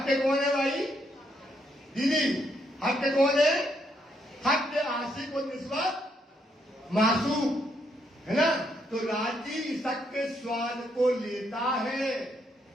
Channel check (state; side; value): normal; both; correlation 0.75